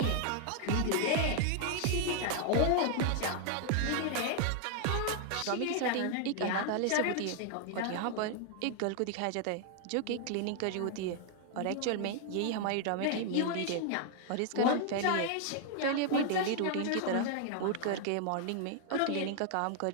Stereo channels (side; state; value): both; different; correlation 0.00